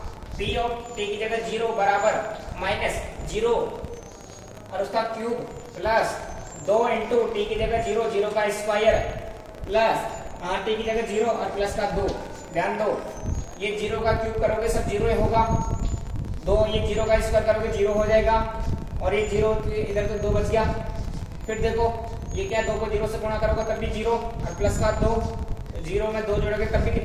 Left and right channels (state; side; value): identical; both; correlation 1.00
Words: p ऑफ t की जगह 0 बराबर माइनस 0 और उसका क्यूब प्लस 2 इंटू टी की जगह 0, 0 का स्क्वायर प्लस टी की जगह 0 और प्लस का 2। ध्यान दो ये 0 का क्यूब करोगे सब 0 ही होगा, 2 ये 0 का स्क्वायर करोगे 0 हो जाएगा, और ये 0 इधर तो 2 बच गया। फिर देखो ये क्या, 2 को 0 से गुणा करोगे तब भी 0 और प्लस का 2, 0 में 2 जोड़ोगे तब भी